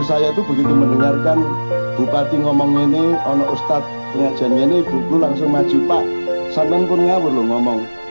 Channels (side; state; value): both; inverted; correlation -1.00